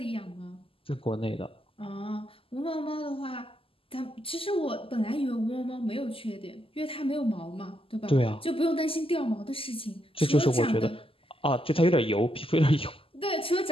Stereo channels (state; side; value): late; right; 0.26 ms